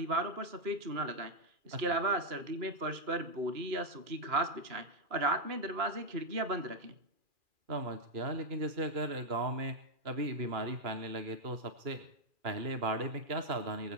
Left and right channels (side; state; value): left; late; 2.4 ms